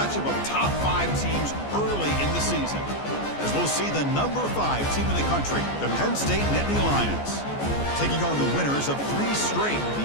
of top 5 teams early in the season. As we'll see the number 5 team in the country, the Penn State Nittany Lions, taking on the winners of 3 straight,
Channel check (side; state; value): right; late; 14 ms